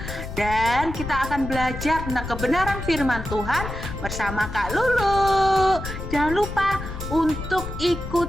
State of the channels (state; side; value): noise; left; rumble, 8 dB below the sound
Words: Dan kita akan belajar tentang kebenaran firman Tuhan bersama Kak Lulu. Jangan lupa untuk